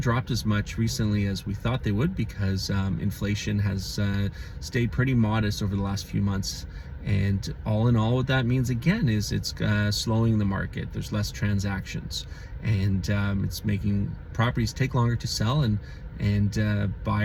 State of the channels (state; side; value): identical; both; correlation 1.00